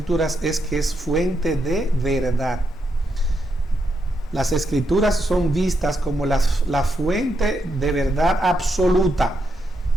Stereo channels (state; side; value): normal; both; correlation 0.81